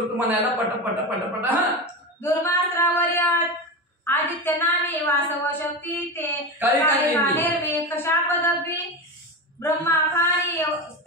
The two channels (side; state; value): both; normal; correlation 0.21